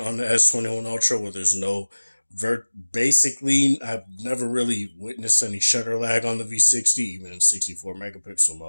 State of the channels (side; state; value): both; inverted; correlation -1.00